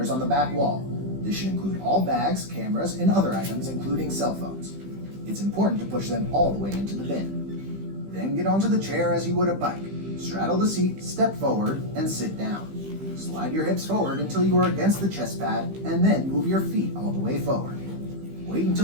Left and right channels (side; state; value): left; late; 15 ms